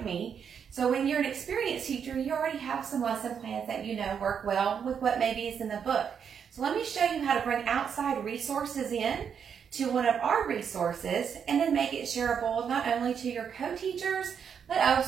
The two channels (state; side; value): quieter; left; 7.4 dB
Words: me. So when you're an experienced teacher, you already have some lesson plans that you know work well with what maybe is in the book. So let me show you how to bring outside resources in to one of our resources and then make it shareable not only to your co-teachers but